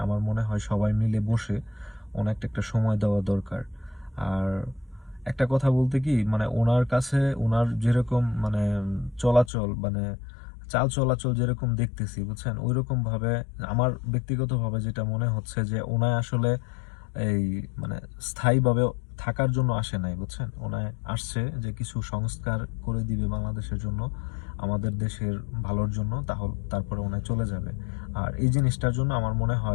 আমার মনে হয় সবাই মিলে বসে ওনাকে একটা সময় দেওয়া দরকার। আর একটা কথা বলতে কি মানে ওনার কাছে ওনার যেরকম মানে চলাচল মানে চাল চলাচল যেরকম দেখতেছি বুঝছেন ওইরকম ভাবে আমার ব্যক্তিগতভাবে যেটা মনে হচ্ছে যে ওনায় আসলে এই মানে স্থায়ীভাবে থাকার জন্য আসে নাই বুঝছেন ওনায় আসছে যে কিছু সংস্কার করে দিবে বাংলাদেশের জন্য আমাদের দেশের ভালোর জন্য তাহলে তারপরে ওনায় চলে যাবে। আর এই জিনিসটার জন্য আমার মনে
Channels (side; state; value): right; drops out; at 9.5 s